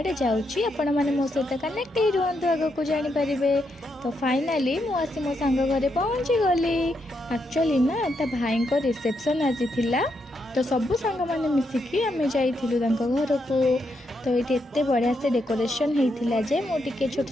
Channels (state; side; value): normal; both; correlation 0.80